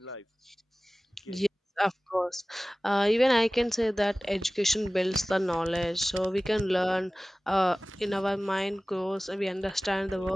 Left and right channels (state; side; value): normal; both; correlation 0.98